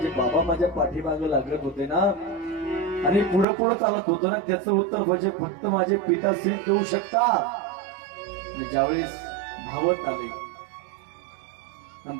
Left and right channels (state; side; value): drops out; left; at 3.5 s